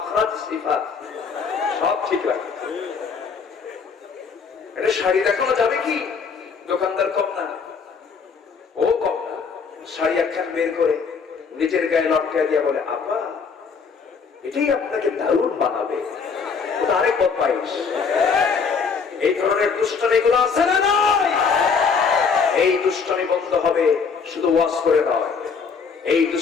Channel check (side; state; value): right; quieter; 5.6 dB